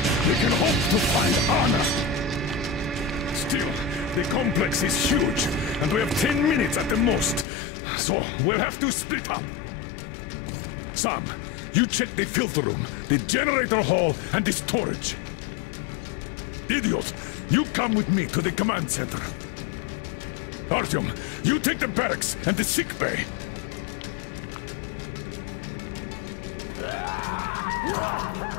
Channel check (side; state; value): right; drops out; at 7.5 s